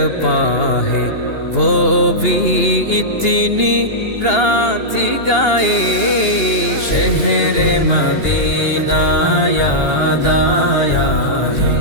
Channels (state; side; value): late; right; 2.8 ms